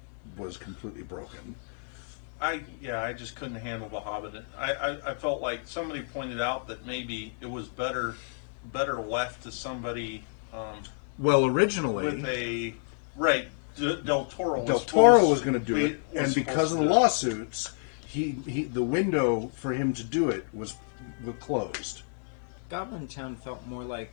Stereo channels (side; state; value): right; silent; digital silence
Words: was completely broken. I just couldn't handle The Hobbit. I felt like somebody pointed out that maybe it was better left to somebody. Well, originally, with Del Toro was going to do it, and because of the lawsuits, the window for him to do it was closed. Goblin Town felt more like